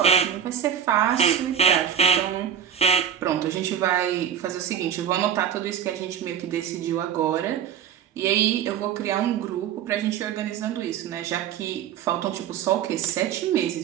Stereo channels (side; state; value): left; quieter; 8.9 dB